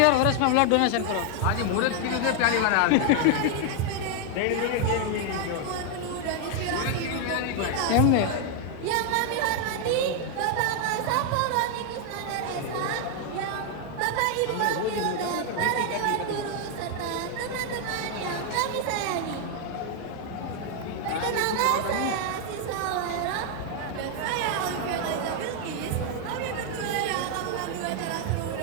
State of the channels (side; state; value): both; different; correlation 0.00